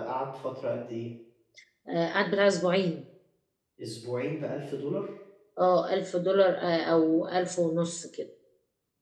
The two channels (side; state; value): both; identical; correlation 1.00